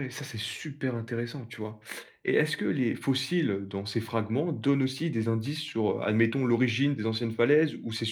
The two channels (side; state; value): both; identical; correlation 1.00